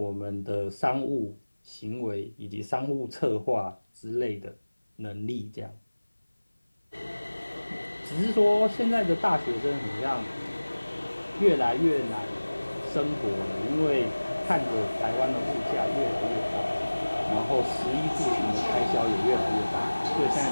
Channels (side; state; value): both; inverted; correlation -1.00